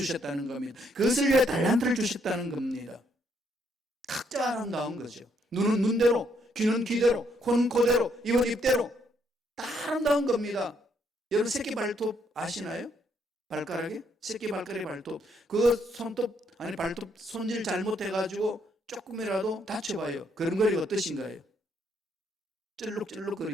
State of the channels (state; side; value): normal; both; correlation 0.72